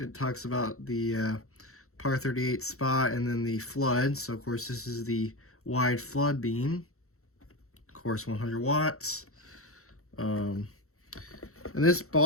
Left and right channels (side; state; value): right; late; 0.63 ms